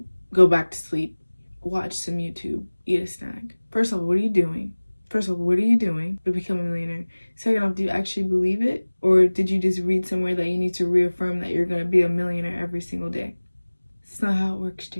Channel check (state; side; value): inverted; both; correlation -1.00